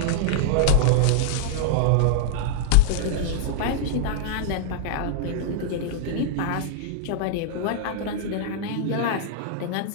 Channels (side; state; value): both; different; correlation -0.01